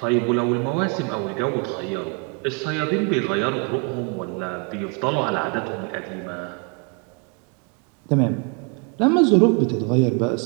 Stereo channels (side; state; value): left; quieter; 34.6 dB